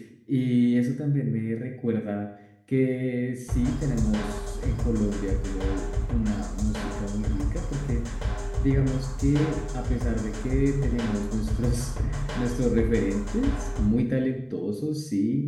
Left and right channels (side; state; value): both; identical; correlation 1.00